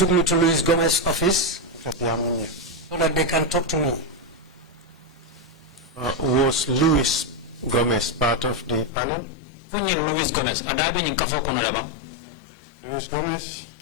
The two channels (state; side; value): drops out; right; at 8.9 s